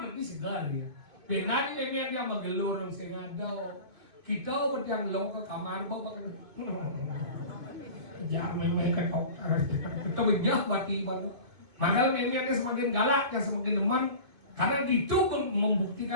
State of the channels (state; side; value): late; left; 2.4 ms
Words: berarti segar dia. Benanya memian dia magelur sing ada. Kita berjang lo ke kamar bawa kan, jangan main ke kokar, kita banyak bati baru. Makanya memangnya semakin galak, yang semakin deman, karena itu